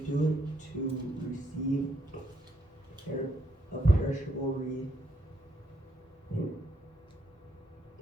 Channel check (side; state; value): both; normal; correlation 0.75